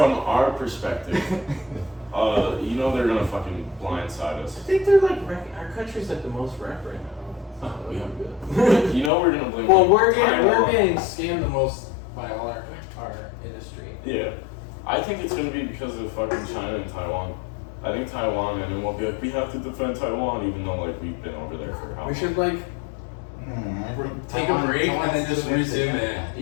our perspective, you know they're gonna fucking blindside I us. think they're like our country's like the most wrecked right now. Oh, yeah. You know we're gonna blame. Well, we're Taiwan. getting scammed the most by all our industry. Yeah, I think it's gonna be because of fucking China and Taiwan. I think Taiwan, and then we'll be like, we have to defend Taiwan, even though like we've been over there for how long? We should like I think take Taiwan- a break and Taiwan's then just doing resume it. it.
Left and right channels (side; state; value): right; drops out; at 9.1 s